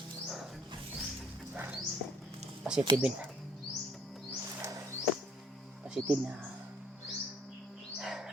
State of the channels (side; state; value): both; normal; correlation 0.62